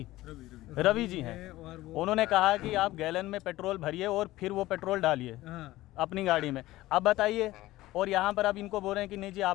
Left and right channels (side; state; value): right; quieter; 17.0 dB